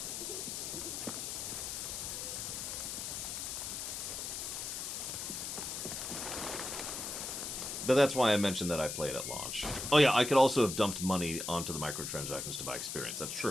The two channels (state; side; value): noise; left; hiss, 4 dB below the sound